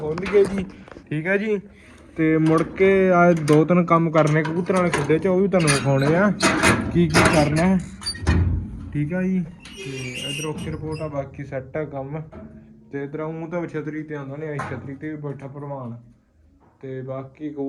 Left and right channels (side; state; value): both; identical; correlation 1.00